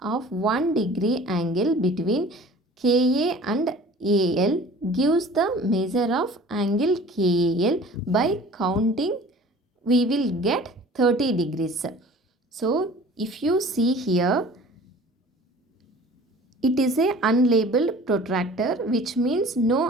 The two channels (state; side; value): normal; both; correlation 0.46